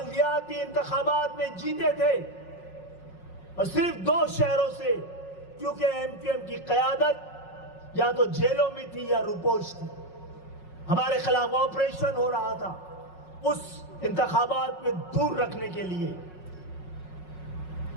انتخابات میں جیتے تھے اور صرف 2 شہروں سے، کیونکہ ایم کیو ایم کی قیادت یا تو جیلوں میں تھی یا روپوش تھی، ہمارے خلاف آپریشن ہو رہا تھا اس انتخابات میں دور رکھنے کے لیے،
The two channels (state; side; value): late; right; 5.5 ms